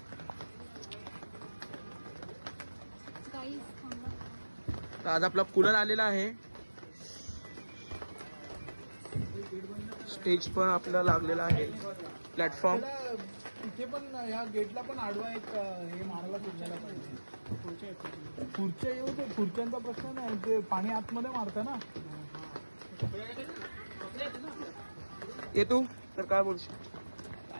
तर आज आपला कूलर आलेला आहे. स्टेज पण आपल्याला लागलेला आहे. प्लॅटफॉर्म इथे पण या गेटला पण आडवा एक हे मारायला सुटलेला पाहिजे. खुर्च्या येऊ ते खुर्च्यांचा प्रश्न नाही, ते पाणी आतमध्ये मारतं ना. ये तू तर काय बोलशील?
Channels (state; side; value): inverted; both; correlation -1.00